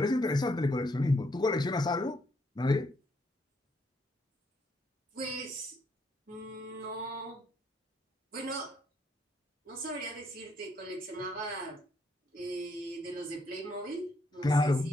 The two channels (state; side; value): normal; both; correlation 0.73